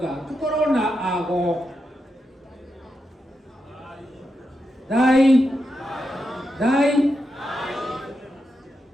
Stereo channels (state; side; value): normal; both; correlation 0.86